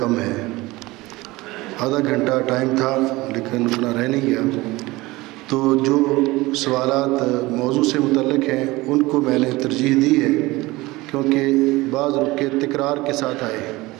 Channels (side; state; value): left; quieter; 20.6 dB